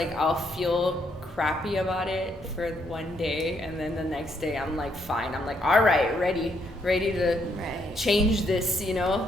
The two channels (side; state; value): both; normal; correlation 0.73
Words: I'll feel crappy about it for one day, and then the next day I'm like fine. I'm like, all right, ready to change this,